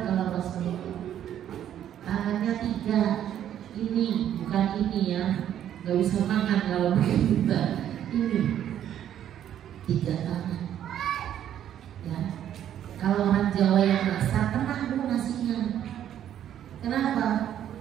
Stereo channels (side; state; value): left; quieter; 10.6 dB